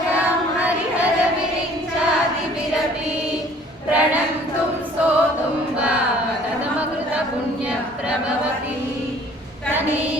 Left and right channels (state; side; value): normal; both; correlation 0.54